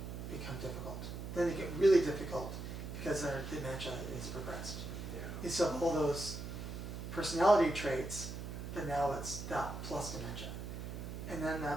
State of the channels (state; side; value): noise; right; hum, 7 dB below the sound